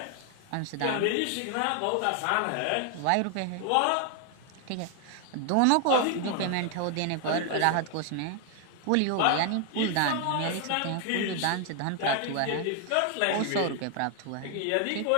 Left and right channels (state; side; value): different; both; correlation 0.00